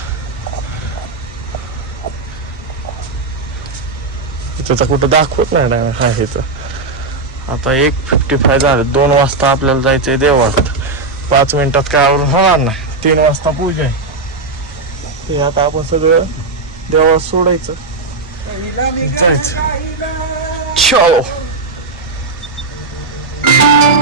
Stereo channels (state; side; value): quieter; left; 3.8 dB